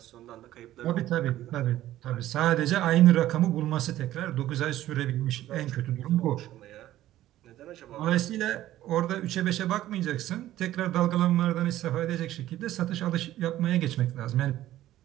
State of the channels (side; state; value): left; quieter; 14.0 dB